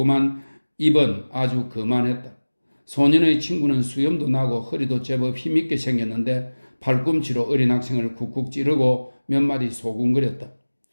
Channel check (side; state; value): both; inverted; correlation -1.00